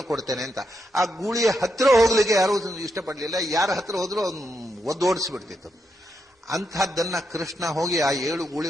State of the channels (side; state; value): both; normal; correlation 0.82